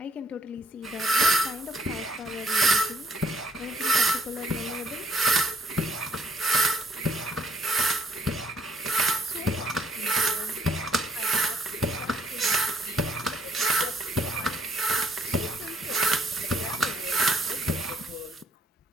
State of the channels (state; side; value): normal; both; correlation 0.67